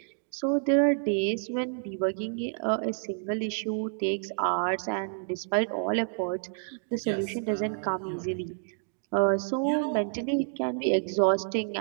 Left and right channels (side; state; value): left; silent; digital silence